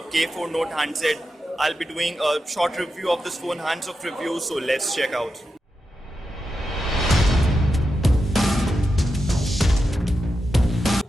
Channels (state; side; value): normal; both; correlation 0.88